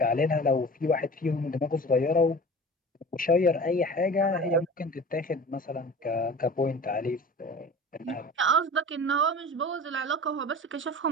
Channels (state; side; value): normal; both; correlation 0.38